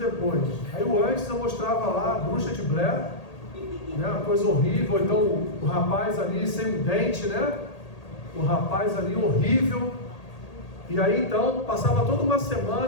Aí o antes eu mostrava lá a bruxa de Blair, né? Uma coisa horrível. Então o rapaz ali sem um dente, né? O rapaz ali horrível. E aí então passava toda uma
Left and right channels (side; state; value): right; late; 1.8 ms